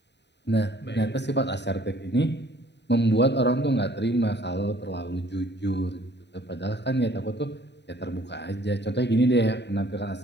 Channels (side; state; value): right; late; 0.50 ms